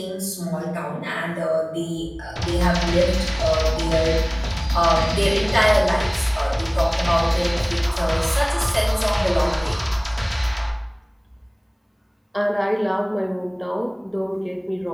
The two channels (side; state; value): both; identical; correlation 1.00